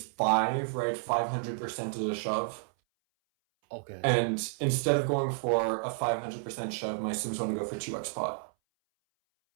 5, right? 500% is a shove. Okay. And instead of going for a 500% shove, my sims want to go for 2x pot.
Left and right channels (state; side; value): silent; left; 57 dB below the other